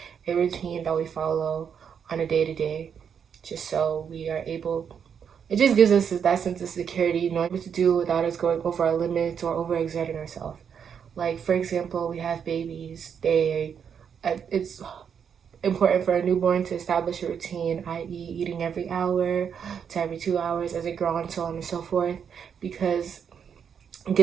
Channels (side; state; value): left; quieter; 7.4 dB